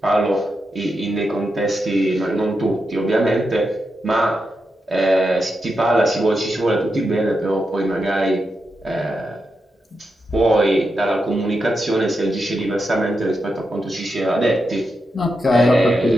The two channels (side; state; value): both; normal; correlation 0.86